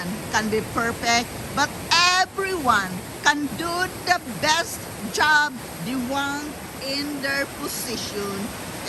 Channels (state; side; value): identical; both; correlation 1.00